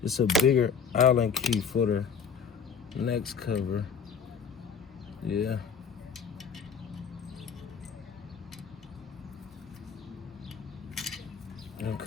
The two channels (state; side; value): quieter; right; 6.3 dB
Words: It's a bigger Allen key for the next cover. Yeah.